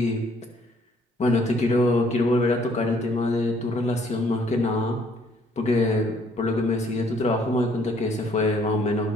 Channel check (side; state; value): both; normal; correlation 0.63